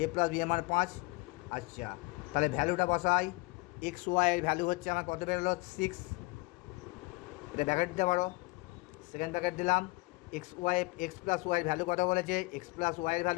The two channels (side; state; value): right; quieter; 23.8 dB